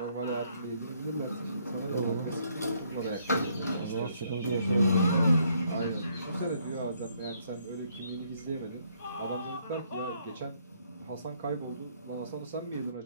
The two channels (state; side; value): inverted; both; correlation -0.69